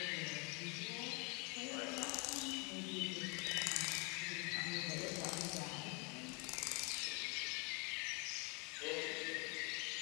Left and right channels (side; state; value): right; quieter; 31.0 dB